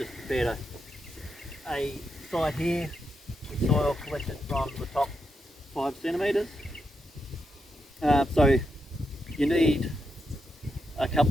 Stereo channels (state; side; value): normal; both; correlation 0.84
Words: prepared a site here with soil collected from the top 5 centimetres. So you need a